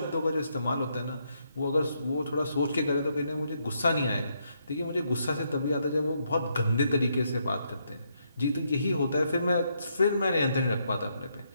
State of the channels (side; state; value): both; inverted; correlation -0.77